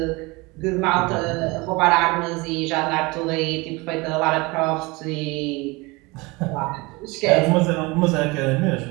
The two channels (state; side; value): quieter; left; 24.6 dB